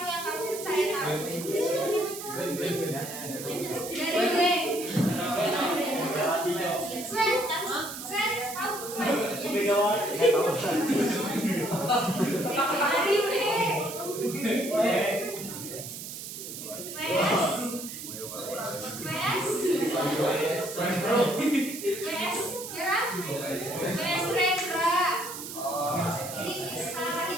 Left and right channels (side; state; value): right; noise; hiss, 9 dB below the sound